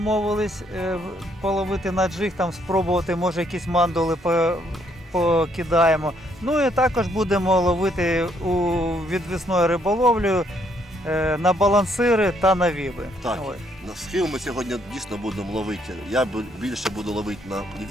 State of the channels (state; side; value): normal; both; correlation 0.70